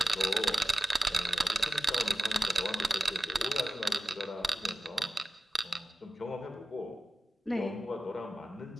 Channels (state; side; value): normal; both; correlation 0.92